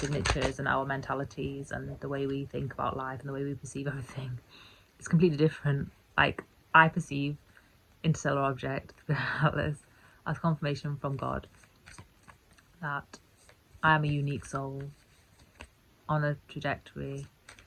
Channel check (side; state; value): both; identical; correlation 1.00